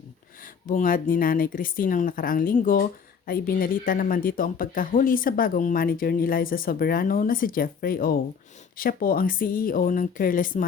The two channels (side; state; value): right; quieter; 6.3 dB